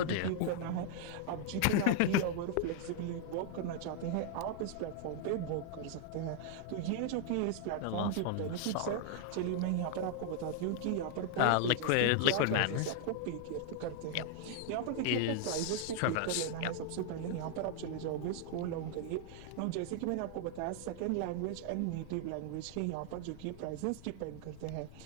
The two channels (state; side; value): different; both; correlation 0.00